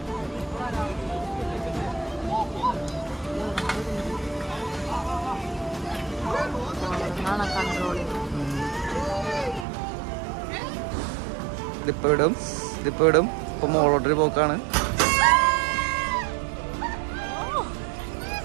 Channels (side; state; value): left; drops out; at 9.7 s